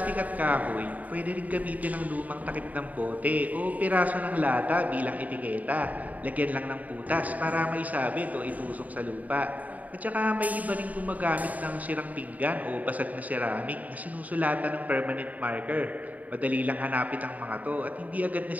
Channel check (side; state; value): left; late; 0.074 ms